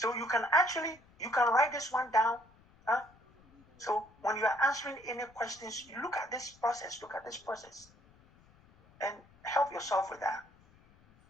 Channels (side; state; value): left; noise; rumble, 28 dB below the sound